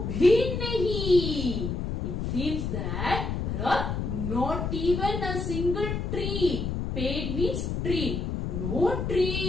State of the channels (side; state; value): left; noise; rumble, 2 dB below the sound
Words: भी नहीं. It seems that there are not even a single tree. Ped means tree. No